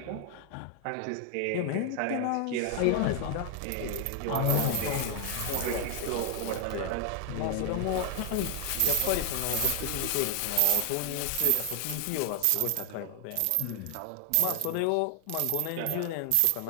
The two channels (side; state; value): both; different; correlation 0.00